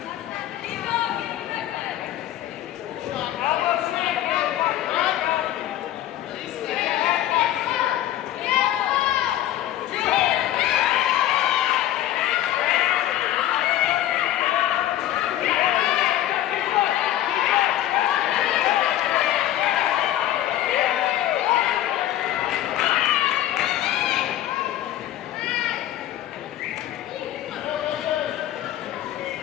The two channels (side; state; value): right; quieter; 13.0 dB